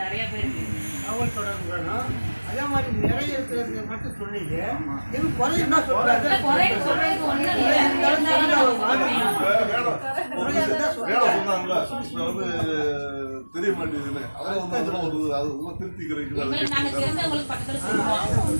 நிறைய பேருக்கு தகவல் தொடர்பு வேணும். அதே மாதிரி நிறைய இருக்கிறது மட்டும் சொன்னீங்க. இது குறையுன்னா சொல்றாங்க. சொல்றது ஒன்றும் தெரிய மாட்டேங்குதுன்னு அதெல்லாம் வந்து அது திருப்திக்கிறீங்க. நாங்கள் தெரிஞ்சவங்களுக்கு பக்கத்தில் சொல்லுவோம்.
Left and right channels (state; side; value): inverted; both; correlation -1.00